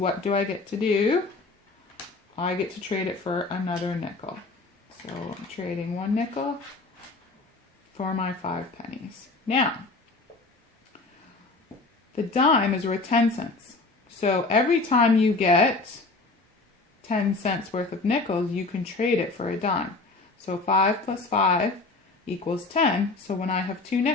do I get to do? I get to trade it for another nickel. So I'm trading 1 nickel for my 5 pennies. Now, the dime is worth 10 cents. So every time you get 10 cents worth of nickels, you can trade it for a dime. So 5 plus 5 equals 10. So when I have 2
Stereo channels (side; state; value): right; quieter; 3.5 dB